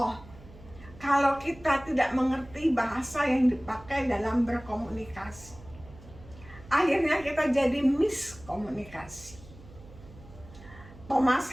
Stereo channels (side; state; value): right; noise; hum, 20 dB below the sound